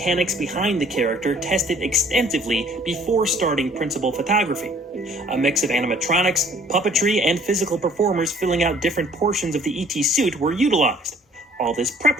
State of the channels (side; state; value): both; normal; correlation 0.56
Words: behind the character tested extensively before starting principal photography. A mix of animatronics, puppetry, and physical performers filling out different portions of the E.T. suit were utilized. All this